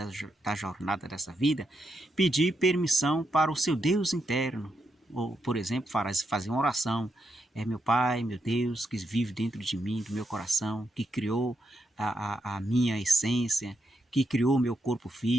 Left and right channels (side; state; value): both; normal; correlation 0.82